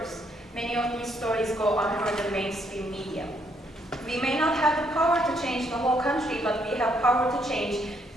Many of these stories go unheard in mainstream media. We may not have the power to change the whole country, but we have power to change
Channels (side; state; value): both; normal; correlation 0.72